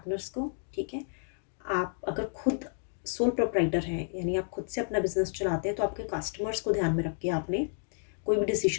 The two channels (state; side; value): silent; right; 57 dB below the other